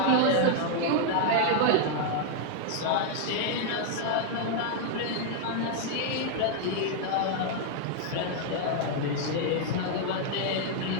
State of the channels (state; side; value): different; both; correlation 0.00